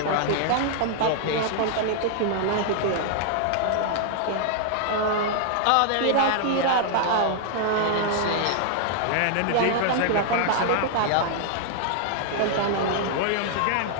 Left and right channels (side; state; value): both; different; correlation -0.01